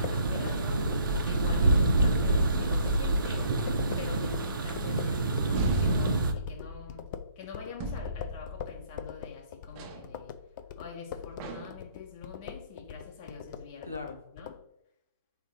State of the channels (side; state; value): both; inverted; correlation -0.63